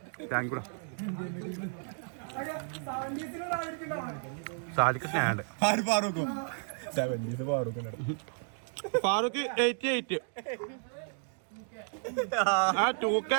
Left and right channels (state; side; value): silent; left; 56 dB below the other